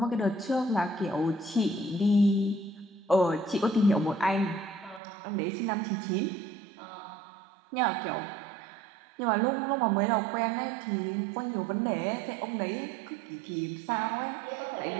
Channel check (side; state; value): left; drops out; at 5.0 s